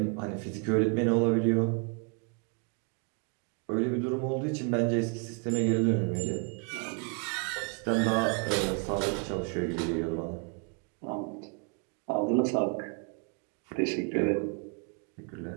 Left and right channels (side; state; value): left; quieter; 36.0 dB